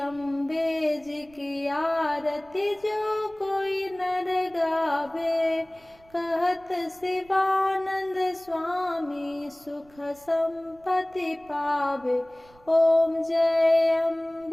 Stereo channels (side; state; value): right; noise; rumble, 28 dB below the sound